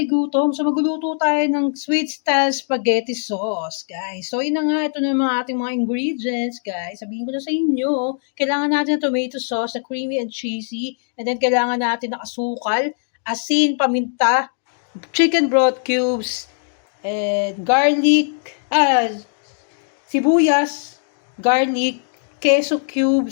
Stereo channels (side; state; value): right; silent; digital silence